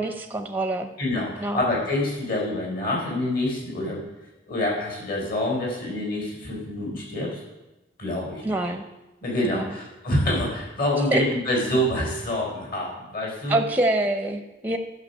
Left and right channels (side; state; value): both; normal; correlation 0.43